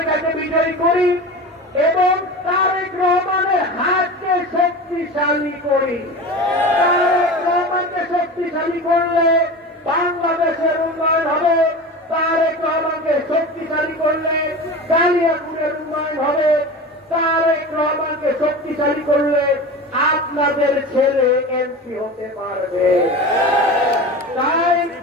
বিজয়ী করি এবং তারেক রহমানের হাতকে শক্তিশালী করি। তারেক রহমানকে শক্তিশালী করলে বাংলাদেশের উন্নয়ন হবে। তারেক কেন্দ্রকে শক্তিশালী করলে কালিয়াকুড়ের উন্নয়ন হবে, তারেক রহমানকে শক্তিশালী করলে আপনাদের ছেলে এমপি হতে পারবে। তাই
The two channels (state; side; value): normal; both; correlation 0.30